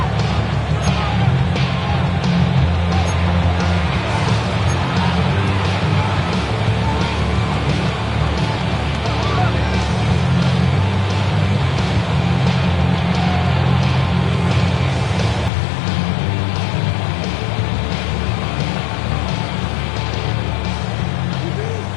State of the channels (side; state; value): right; drops out; at 15.5 s